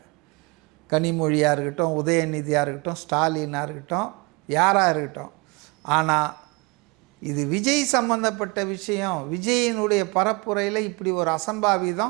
கனிமொழியாக இருக்கட்டும், உதயநிதியாக இருக்கட்டும், ஸ்டாலினாக இருக்கட்டும், யாராக இருக்கட்டும். ஆனால் இது விஜய் சம்பந்தப்பட்ட விஷயம், விஜயினுடைய பரப்புரையில் இப்படி ஒரு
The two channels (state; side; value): quieter; left; 27.6 dB